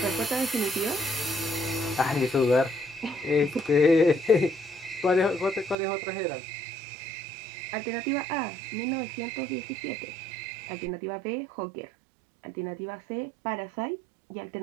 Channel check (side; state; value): left; drops out; at 5.8 s